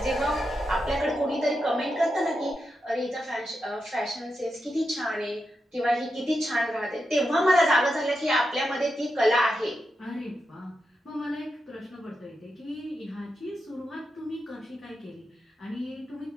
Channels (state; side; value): normal; both; correlation 0.87